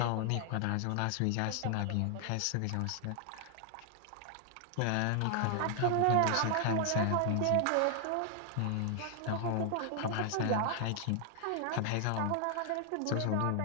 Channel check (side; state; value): both; different; correlation 0.00